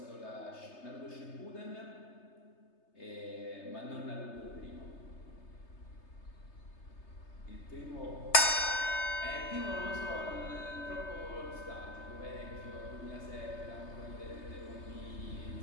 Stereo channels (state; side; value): late; right; 3.3 ms